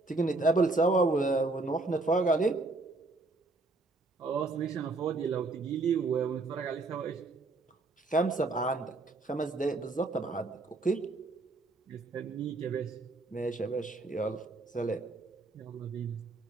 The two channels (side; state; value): left; quieter; 3.3 dB